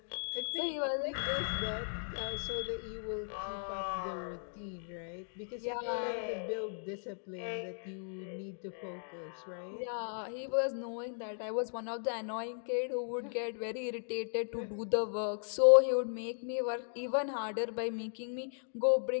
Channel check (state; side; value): silent; right; digital silence